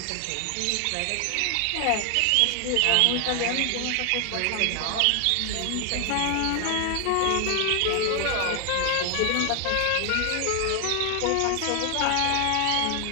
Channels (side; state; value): both; different; correlation 0.00